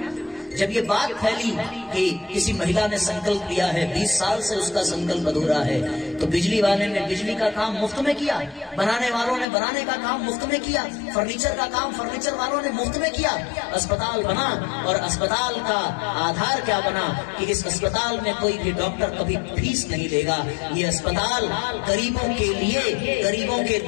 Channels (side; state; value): right; drops out; at 9.5 s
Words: जब ये बात फैली कि किसी महिला ने संकल्प लिया है, 20 साल से उसका संकल्प अधूरा है, तो बिजली वाले ने बिजली का काम मुफ्त में किया, बनाने वालों ने बनाने का काम मुफ्त में किया, फर्नीचर का काम फर्नीचर वालों ने मुफ्त में किया। अस्पताल बना, और अस्पताल का आधार क्या बना कि इस अस्पताल में कोई भी डॉक्टर कभी फीस नहीं लेगा। ये अस्पताल गरीबों के लिए, गरीबों के